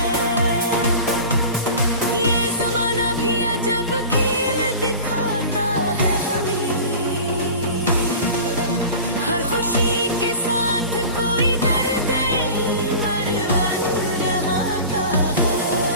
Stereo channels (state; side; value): inverted; both; correlation -0.36